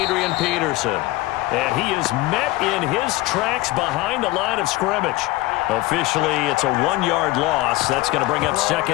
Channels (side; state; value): right; quieter; 18.8 dB